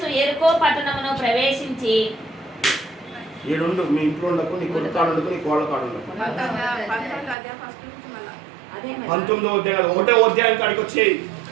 యెరికో పట్టణమును ప్రవేశించి ఏడుండు మీ ఇంట్లో ఉండకు, నీ కొడుకు కాడు ఉండకు, నీ కోళ్ళ కాడు ఉండకు. 19వ అధ్యాయం 1వ అధ్యాయం కాడికి వచ్చాయి.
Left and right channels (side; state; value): left; drops out; at 7.4 s